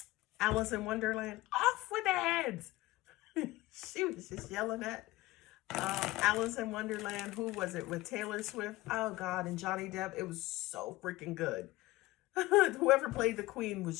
Alice in Wonderland. Off with their heads. She was just yelling at Alice in Wonderland. Who was it with Taylor Swift? Oh God, and Johnny Depp. It was so freaking good. Whoever played the Queen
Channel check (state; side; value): quieter; right; 18.9 dB